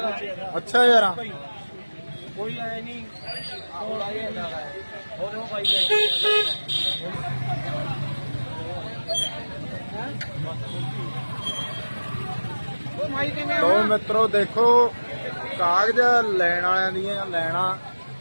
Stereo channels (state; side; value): inverted; both; correlation -1.00